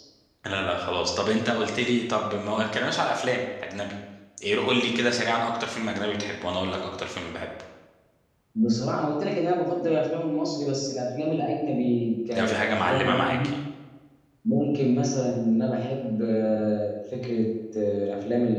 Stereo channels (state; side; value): identical; both; correlation 1.00